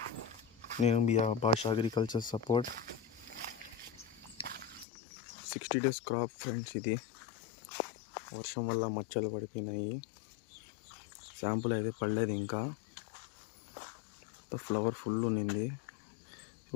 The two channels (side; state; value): right; drops out; at 4.9 s